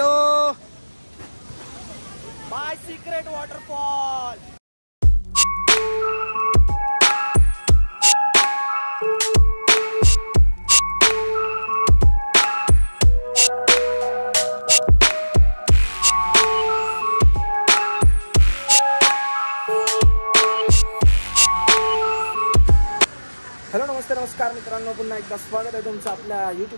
bye secret waterfall. Hello नमस्कार मित्रांनो, पुन्हा एकदा स्वागत आहे तुमचं आपल्या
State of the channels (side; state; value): both; inverted; correlation -1.00